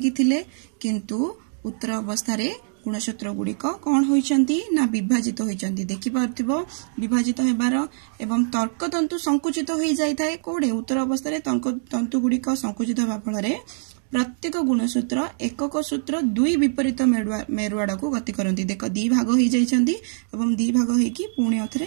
थिले किंतु उत्तर अवस्था रे गुणसूत्र गुड़िक कौन होइचंती ना विभाजित होइचंती। देखि पारथिबो विभाजित हेबार एवं तर्कतंतु संकुचित होई जाय थाए कोडे उत्तर अवस्था रे तंतु गुड़िक संकुचित होबा फल रे प्रत्येक गुणसूत्र एकक सूत्र दुई विपरीत मेरुआड़ को गति करती। देख दी भाग हो जाइछंती एवं दी भाग होइकी पुणी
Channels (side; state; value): left; silent; digital silence